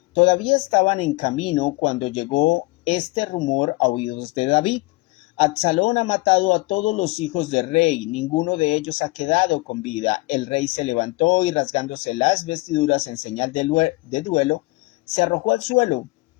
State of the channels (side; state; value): right; quieter; 22.9 dB